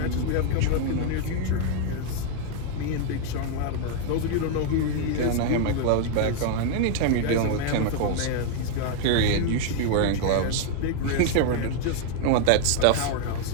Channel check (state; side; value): different; both; correlation 0.00